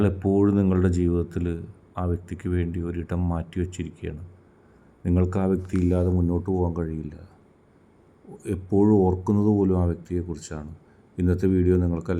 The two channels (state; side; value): identical; both; correlation 1.00